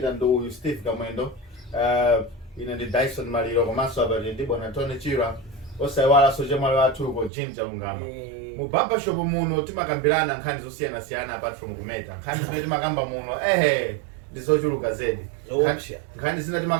ndo Steve Kamwendo. Ine ndi Dyson Maliro komanso abali ndi bwana Tony Chirwa. Osaiwala soje mwali watu ko Jinja Ungama. Mu barbershop muno timakambirana nkhani zosiyana apart from kumeta. Nkhani zimene timakamba muno ndizochuluka zedi. Nkhani zina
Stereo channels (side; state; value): left; drops out; at 7.3 s